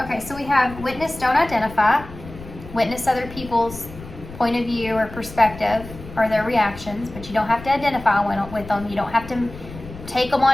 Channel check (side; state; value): left; noise; rumble, 15 dB below the sound